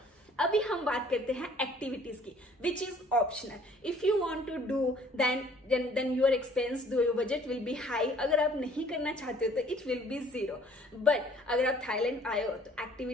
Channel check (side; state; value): both; normal; correlation 0.56